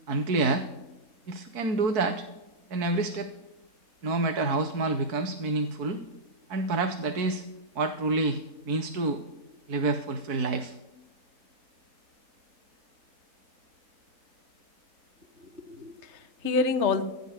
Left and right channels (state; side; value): late; left; 4.5 ms